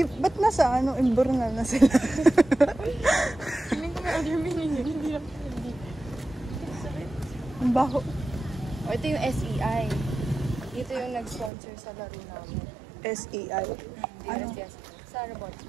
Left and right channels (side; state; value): left; drops out; at 11.5 s